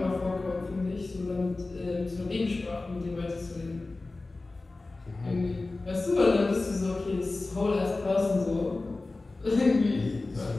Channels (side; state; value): right; quieter; 3.3 dB